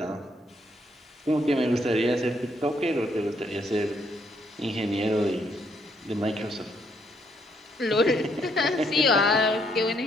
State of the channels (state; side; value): normal; both; correlation 0.71